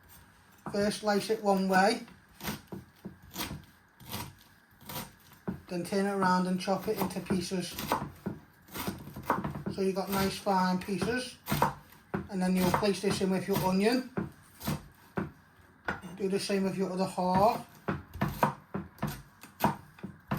First slice it one way, then turn it around and chop it into pieces. So you've got nice fine pieces. And then you'll place this in with your onion. Do the same with your other half.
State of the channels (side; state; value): both; identical; correlation 1.00